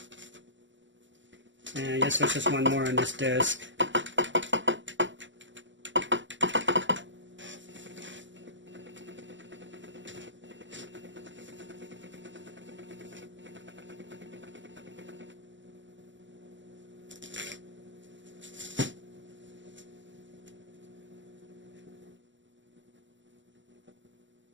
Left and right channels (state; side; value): late; left; 0.54 ms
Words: And I guess there's just one more on this disc.